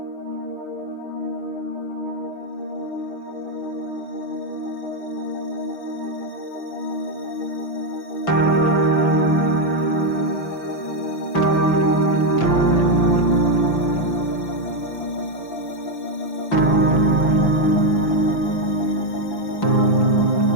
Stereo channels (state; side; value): late; right; 5.9 ms